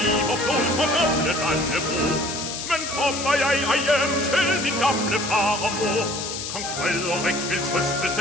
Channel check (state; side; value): noise; left; hiss, 6 dB below the sound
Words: liv og blod for gamle Dannebrog. Men kommer jeg ej hjem til min gamle far og mor, Kong Frederik vil trøste